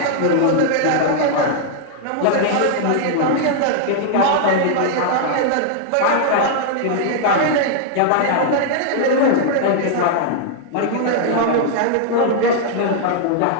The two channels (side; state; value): both; different; correlation -0.01